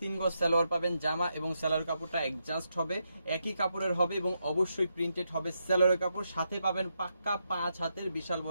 3 গজ সালোয়ার পাবেন। জামা এবং সালোয়ার কাপড়টা অ্যাডজাস্ট হবে, একই কাপড়ের হবে এবং অবশ্যই প্রিন্টেড হবে সালোয়ারের কাপড়। সাথে পাবেন পাক্কা 5 হাতের বিশাল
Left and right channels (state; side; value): inverted; both; correlation -0.82